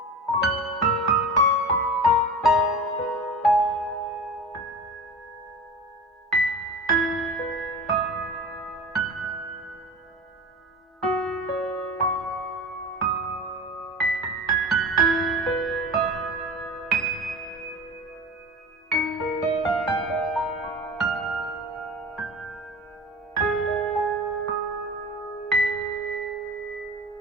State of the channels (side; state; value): both; normal; correlation 0.34